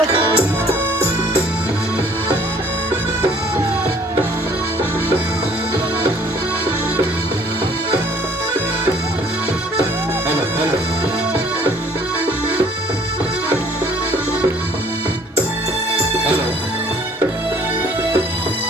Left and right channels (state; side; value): normal; both; correlation 0.57